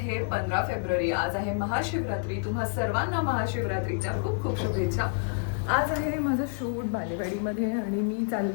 15 फेब्रुवारी. आज आहे महाशिवरात्री. तुम्हा सर्वांना महाशिवरात्रीच्या खूप खूप शुभेच्छा. आज आहे माझं शूट बालेवाडीमध्ये आणि मी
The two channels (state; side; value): silent; right; digital silence